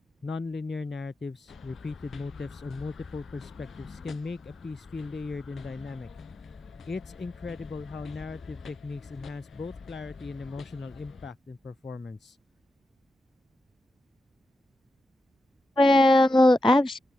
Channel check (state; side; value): normal; both; correlation 0.88